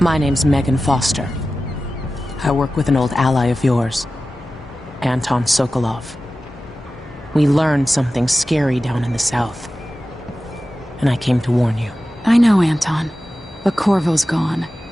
name's Megan Foster. I work with an old ally of yours, Anton Sokolov. We learned something scary down in the south, and I came to warn you. I know, Anton, but Corvo's gone.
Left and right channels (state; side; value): normal; both; correlation 0.95